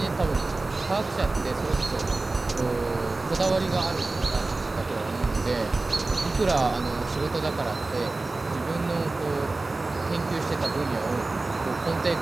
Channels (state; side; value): quieter; left; 3.3 dB